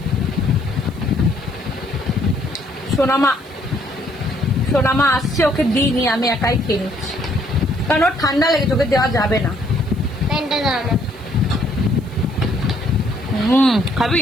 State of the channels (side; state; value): right; noise; hiss, 28 dB below the sound